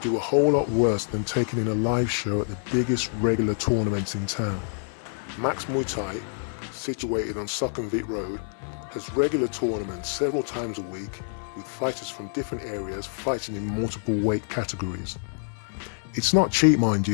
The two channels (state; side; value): silent; right; 59 dB below the other